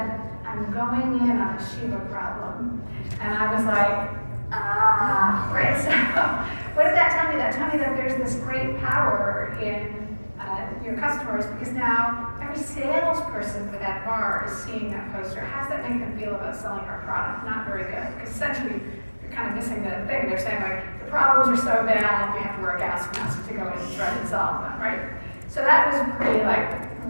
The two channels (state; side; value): inverted; both; correlation -1.00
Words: "I'm going in on a Shiva problem." And I was like, right. So what did that tell me? That told me that there's this great power in your customers, because now every salesperson for that bar is seeing that poster. How does that make them feel about selling our product? Not very good, because essentially you're kind of missing the thing. They're saying, like, the problems are so bad, we have to wear a gas mask to go in and try and solve them, right? So that was pretty like,